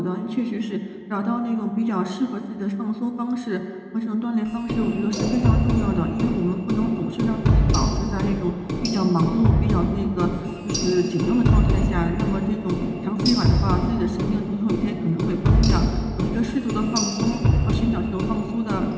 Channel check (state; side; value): identical; both; correlation 1.00